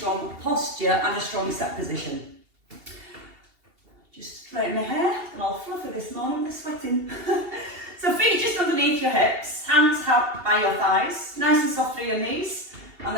posture and a strong set position. Just straighten my hair, and all fluffy this morning with the sweating. So feet just underneath your hips, hands out by your thighs, nice and soft through your knees, and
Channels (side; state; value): left; late; 2.8 ms